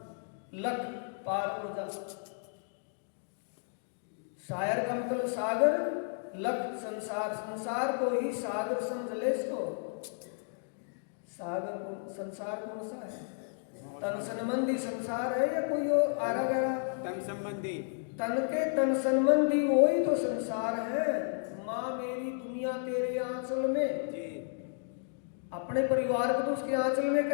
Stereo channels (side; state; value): right; silent; digital silence